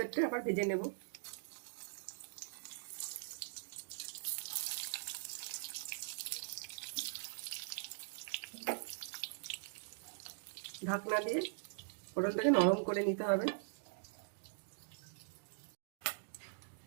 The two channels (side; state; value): left; silent; digital silence